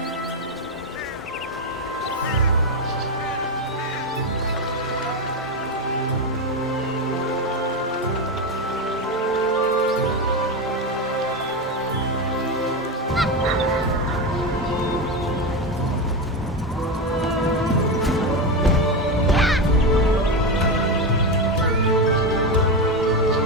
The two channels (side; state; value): both; normal; correlation 0.14